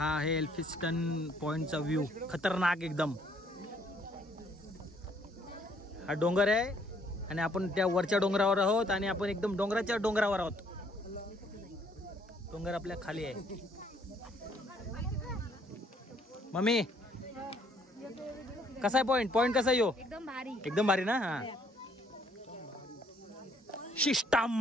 आहे एल्फिस्टन पॉईंटचा व्ह्यू. खतरनाक एकदम. हा डोंगर आहे आणि आपण त्या वरच्या डोंगरावर आहोत आणि आपण एकदम डोंगराच्या डोंगरावर आहोत. डोंगर आपल्या खाली आहे. मम्मी कसा आहे पॉईंट कसा आहे यो? एकदम भारी ना. हा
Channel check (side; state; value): both; normal; correlation 0.65